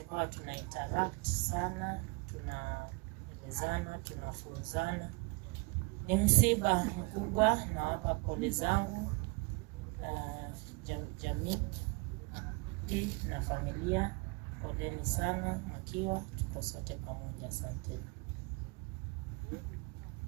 tuna interact sana, tunaelezana, tunafunzana. Ni msiba mkubwa, na hapa pole zangu jamii na familia. Poleni sana Makiwa, tuko sote pamoja. Asante.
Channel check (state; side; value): quieter; left; 27.1 dB